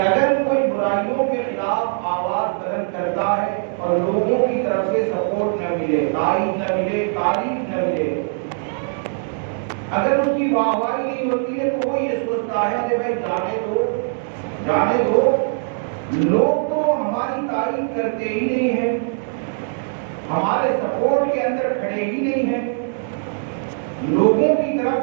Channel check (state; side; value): silent; left; digital silence